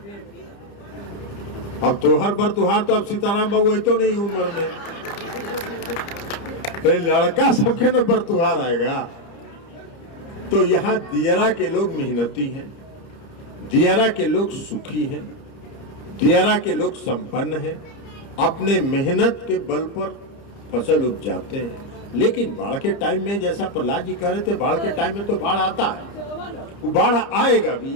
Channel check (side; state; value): right; late; 30 ms